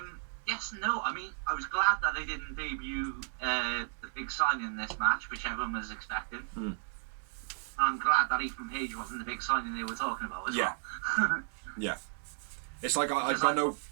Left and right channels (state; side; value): silent; left; digital silence